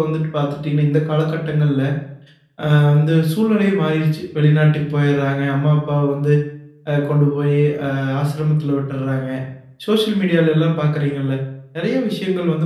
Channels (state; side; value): identical; both; correlation 1.00